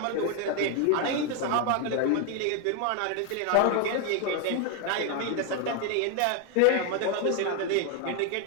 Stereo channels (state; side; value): different; both; correlation 0.01